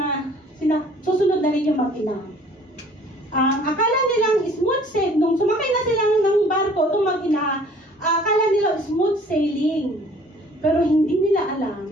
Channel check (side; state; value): both; normal; correlation 0.54